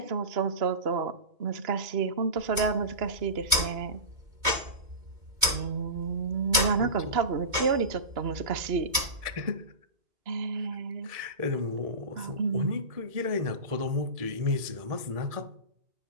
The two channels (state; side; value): late; left; 2.2 ms